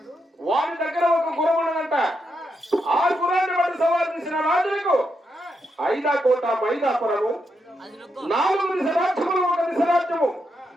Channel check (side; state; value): both; normal; correlation 0.82